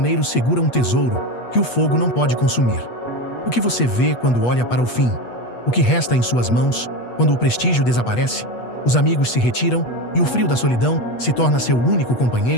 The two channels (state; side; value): late; right; 8.3 ms